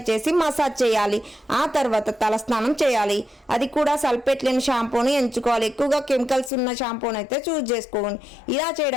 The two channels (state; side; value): drops out; right; at 6.5 s